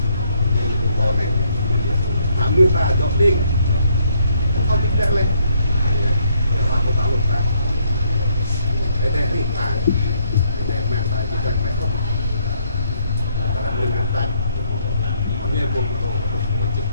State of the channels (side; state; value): both; inverted; correlation -0.70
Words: còn này làm người ta dọn đi. Không biết lên làm một tạo ta để đây thì ta để mẹ ta chỉ cần mẹ không ta làm lên ta hôm nay buồn